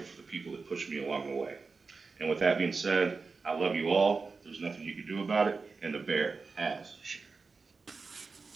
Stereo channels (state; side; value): quieter; left; 4.4 dB